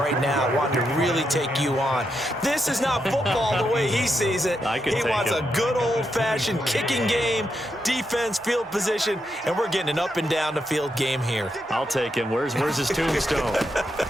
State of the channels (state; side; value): normal; both; correlation 0.83